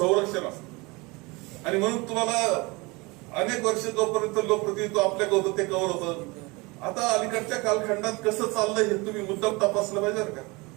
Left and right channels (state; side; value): quieter; left; 25.3 dB